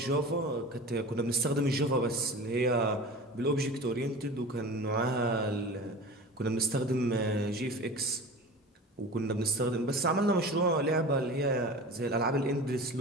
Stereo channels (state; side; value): normal; both; correlation 0.35